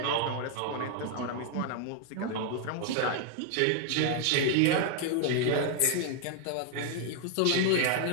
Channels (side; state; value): both; different; correlation 0.00